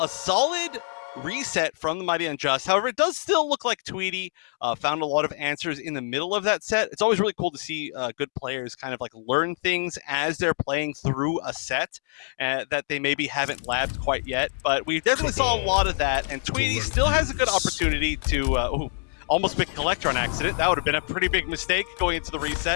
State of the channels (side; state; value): right; silent; digital silence